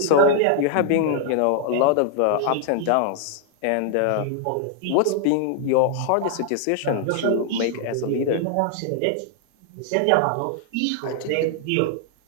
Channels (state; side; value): different; both; correlation 0.00